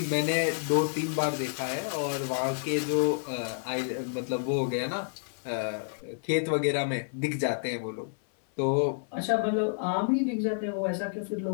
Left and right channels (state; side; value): silent; right; 58 dB below the other